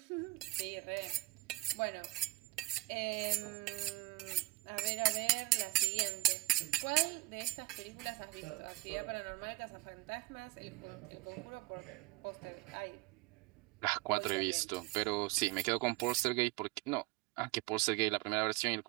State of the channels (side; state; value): left; quieter; 20.3 dB